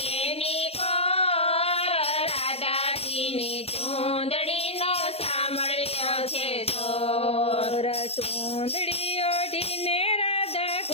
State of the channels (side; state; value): right; late; 0.29 ms